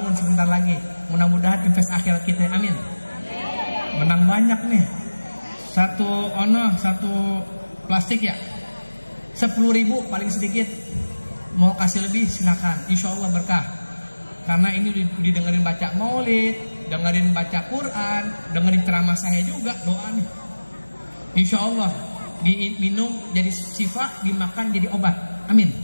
sebentar lagi. Mudah-mudahan invest akhirat kita, amin. Menang banyak nih. Satu plastik ya 10.000 paling sedikit. Mau kasih lebih silakan, insya Allah berkah. Karena ini didengerin baca maulid, dengerin baca Quran, dengerin ceramah saya juga, doa nih. Insya Allah diminum jadi syifa, dimakan jadi obat, amin.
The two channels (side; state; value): both; inverted; correlation -1.00